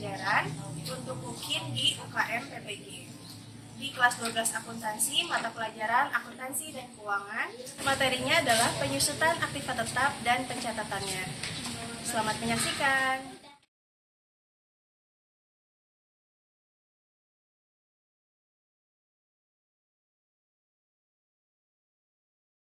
untuk UKIN di UKM PPG. Di kelas 12 akuntansi, mata pelajaran akuntansi dan keuangan. Materinya adalah penyusutan aktiva tetap dan pencatatannya. Selamat menyaksikan.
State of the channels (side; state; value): both; identical; correlation 1.00